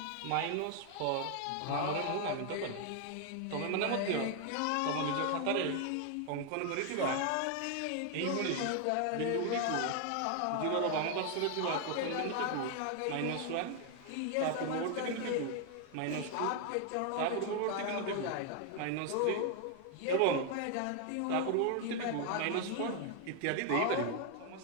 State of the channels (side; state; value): both; different; correlation 0.00